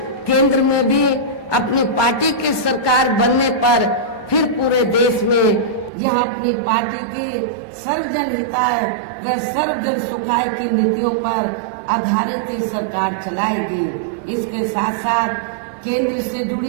केंद्र में भी अपनी पार्टी की सरकार बनने पर फिर पूरे देश में यह अपनी पार्टी की सर्वजन हिताय व सर्वजन सुखाय की नीतियों पर आधारित ही सरकार चलाएगी। इसके साथ साथ केंद्र से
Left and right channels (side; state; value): left; drops out; at 5.9 s